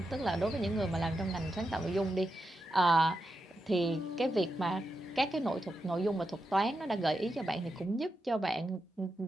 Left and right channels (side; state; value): both; normal; correlation 0.87